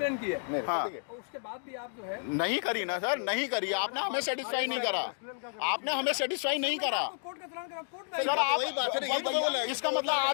की है, हाँ और उसके बाद भी आप जो है नहीं करी ना सर, नहीं करी। आपने हमें सेटिस्फाई नहीं करा, आपने हमें सेटिस्फाई नहीं करा। कोर्ट का चालान सर आप वही बात है ना, यही तो बोला है। इसका मतलब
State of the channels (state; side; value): silent; right; digital silence